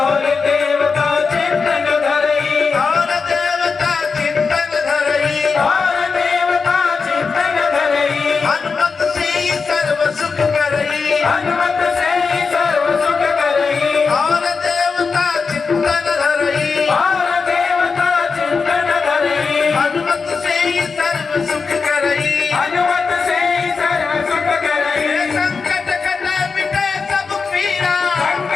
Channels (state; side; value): quieter; right; 5.0 dB